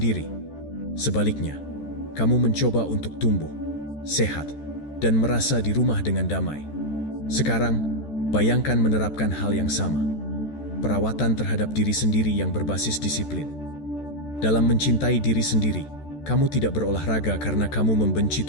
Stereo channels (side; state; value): right; late; 14 ms